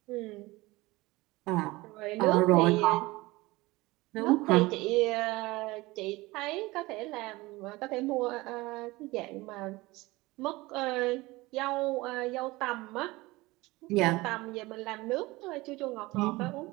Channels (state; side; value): quieter; left; 21.0 dB